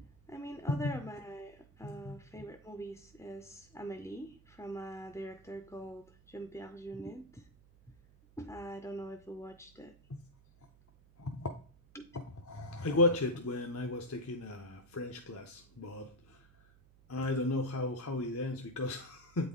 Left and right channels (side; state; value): right; noise; hum, 25 dB below the sound